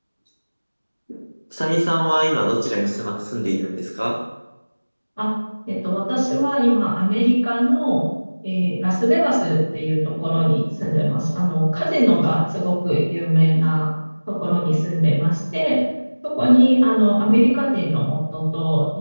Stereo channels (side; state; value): both; inverted; correlation -1.00